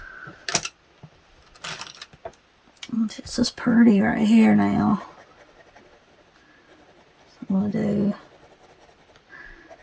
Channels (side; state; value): both; identical; correlation 1.00